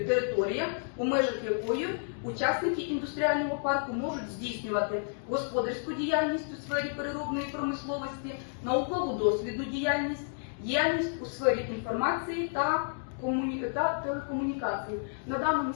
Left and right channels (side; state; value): right; silent; digital silence